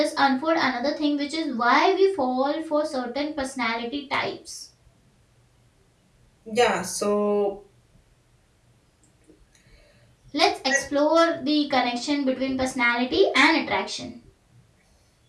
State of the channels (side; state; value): both; identical; correlation 1.00